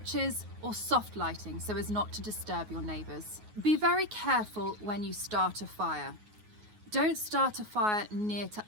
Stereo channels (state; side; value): late; left; 9.4 ms